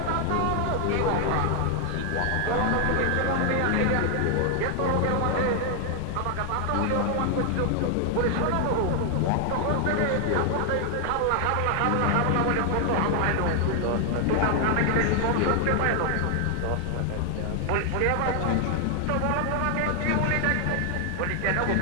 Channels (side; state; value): both; different; correlation 0.00